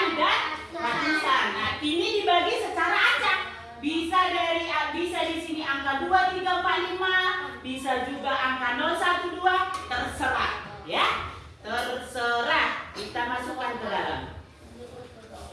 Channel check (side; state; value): both; identical; correlation 1.00